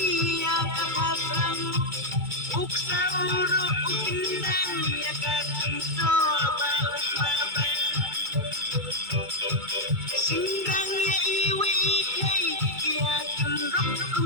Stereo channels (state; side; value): late; left; 2.2 ms